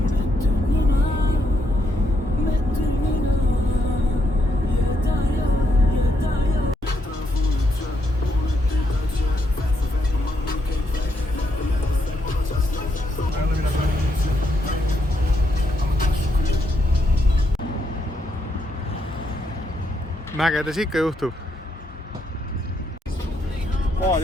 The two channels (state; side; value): normal; both; correlation 0.77